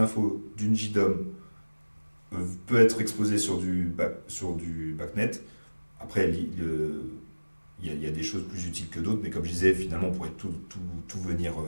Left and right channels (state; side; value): inverted; both; correlation -1.00